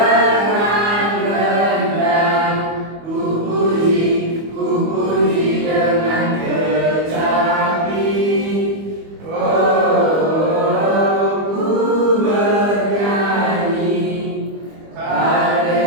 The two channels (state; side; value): late; left; 25 ms